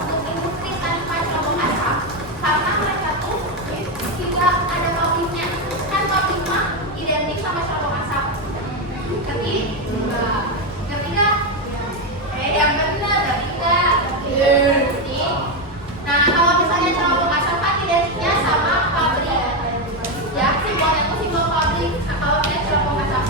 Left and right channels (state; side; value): normal; both; correlation 0.08